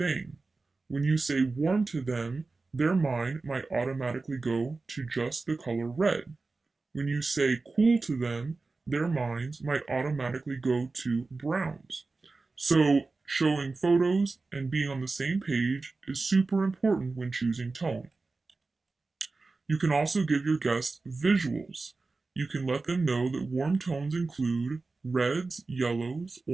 When you say warm to them, their mind might automatically go to just the color red. When you say cool to them, their minds might automatically go to browns. So, showing photos and being on the same page is super important when choosing tone. You can also give your guests visuals. You can let them know that warm tones include reds, yellows,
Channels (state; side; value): quieter; left; 3.7 dB